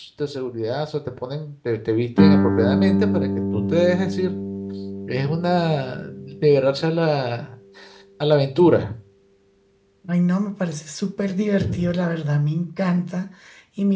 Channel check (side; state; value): both; identical; correlation 1.00